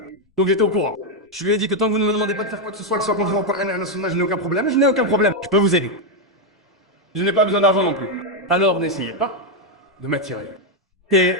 Donc j'étais au courant. Je lui ai dit que tant que vous ne me demandez pas de faire quoi que ce soit contraire au Coran et à la Sunna, je n'ai aucun problème, je n'ai aucun problème. Je peux vous aider. Je n'ai pas besoin d'argent non plus. Alors n'essayez pas de m'attirer. Et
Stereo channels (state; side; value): normal; both; correlation 0.02